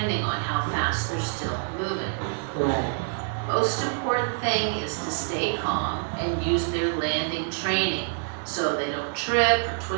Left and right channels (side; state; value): left; silent; digital silence